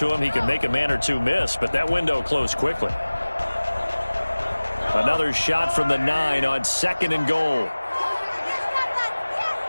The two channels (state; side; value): inverted; both; correlation -1.00